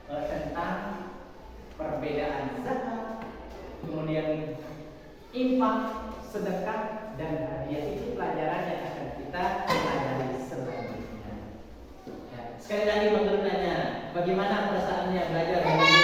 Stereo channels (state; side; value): identical; both; correlation 1.00